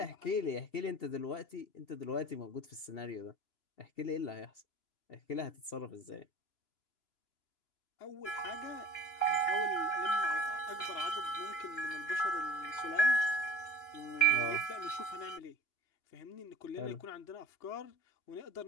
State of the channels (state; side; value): late; right; 2.9 ms